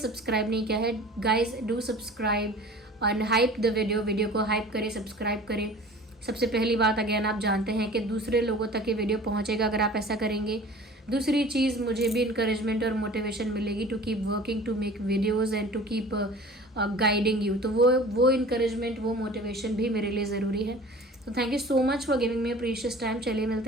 नहीं किया है। Guys do subscribe and hype the video को हाइप करें, सब्सक्राइब करें। सबसे पहली बात, अगेन आप जानते हैं कि दूसरे लोगों तक ये वीडियो पहुंचेगा अगर आप ऐसा करेंगे। दूसरी चीज़, मुझे भी इंकरेजमेंट और मोटिवेशन मिलेगी to keep working, to make videos and to keep guiding you. तो वो इंकरेजमेंट, वो मोटिवेशन भी मेरे लिए ज़रूरी है। तो thank you so much for giving me precious time. चलिए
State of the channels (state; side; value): normal; both; correlation 0.43